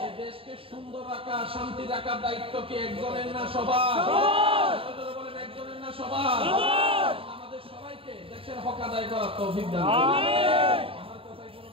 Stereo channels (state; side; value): late; left; 0.27 ms